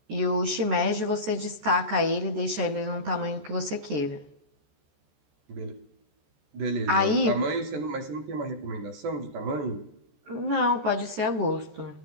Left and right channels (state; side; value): late; left; 14 ms